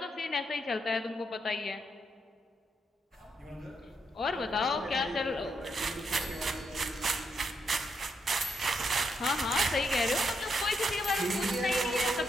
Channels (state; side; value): normal; both; correlation 0.79